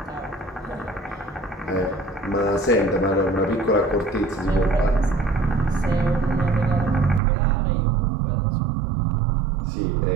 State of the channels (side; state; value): left; drops out; at 7.2 s